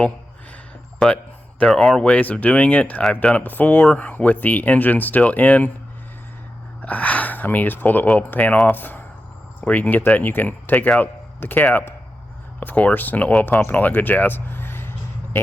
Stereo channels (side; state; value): both; normal; correlation 0.90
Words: but there are ways of doing it. I've done it before with the engine still in. I mean, you just pull the oil pan off where you can get that, and you can take out the cap, of course, and the oil pump and all that good jazz,